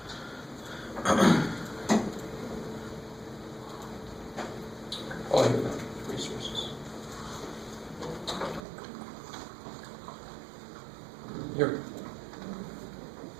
Oh, here we go. Resources. Here we go.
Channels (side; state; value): left; drops out; at 8.6 s